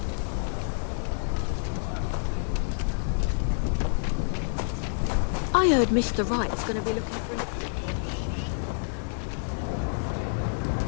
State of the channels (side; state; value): right; silent; digital silence